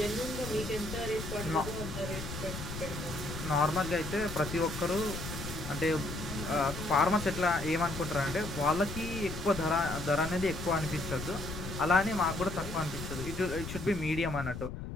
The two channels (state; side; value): noise; left; rumble, 8 dB below the sound